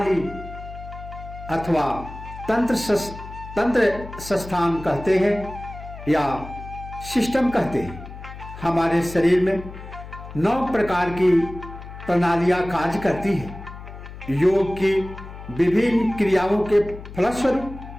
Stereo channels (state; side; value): noise; left; hum, 13 dB below the sound